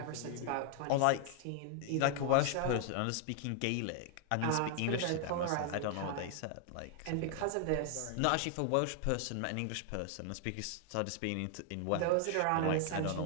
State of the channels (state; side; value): different; both; correlation 0.00